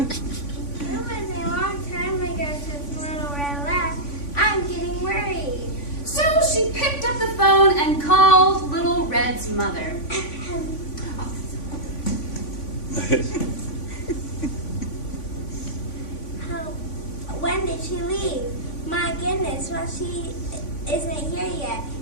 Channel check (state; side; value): late; right; 3.5 ms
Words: was a long time ago since Little Red left. I'm getting worried. So she picked up the phone and called Little Red's mother. When did she leave? My goodness, well, she isn't here yet.